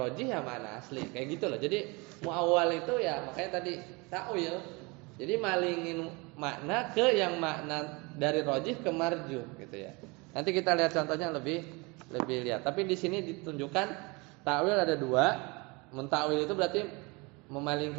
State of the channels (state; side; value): quieter; left; 27.1 dB